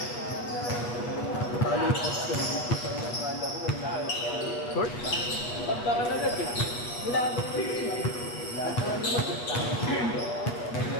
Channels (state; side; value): late; right; 8.3 ms